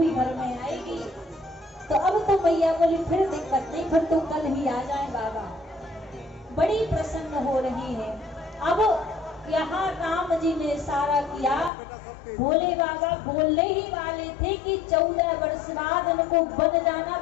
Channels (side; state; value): right; drops out; at 11.7 s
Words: घर में आएगी। तो अब तो मैया बोली फिर दिक्कत नहीं, फिर तो कल ही आ जाए बाबा। बड़ी प्रसन्न हो रही है। अब यहाँ राम जी ने इशारा किया, भोले बाबा बोलने ही वाले थे कि 14 वर्ष बाद उनको बन